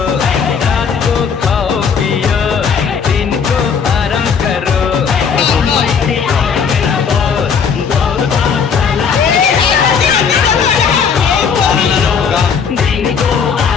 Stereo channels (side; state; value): right; quieter; 6.4 dB